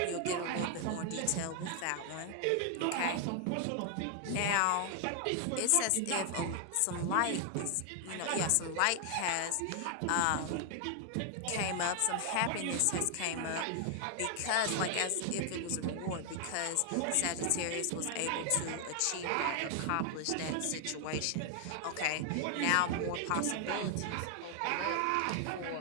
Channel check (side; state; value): both; different; correlation 0.00